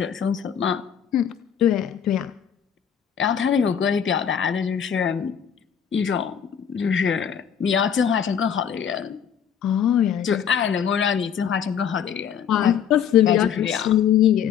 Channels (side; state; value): right; quieter; 8.3 dB